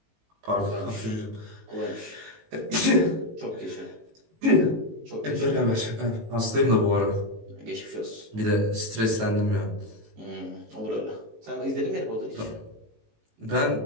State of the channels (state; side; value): late; left; 18 ms